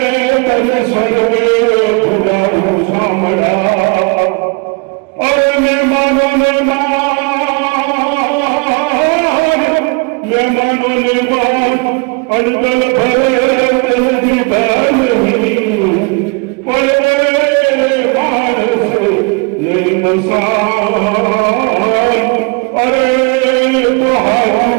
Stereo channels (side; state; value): left; quieter; 30.8 dB